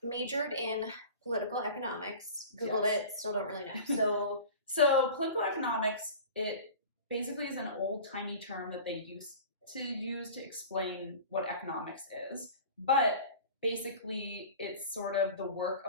majored in political economics, Googled Yes. it, still don't really know. So political economics, it basically is an old-timey term that they used to use to explain what economics is. But basically, it's sort of the work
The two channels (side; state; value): both; inverted; correlation -0.39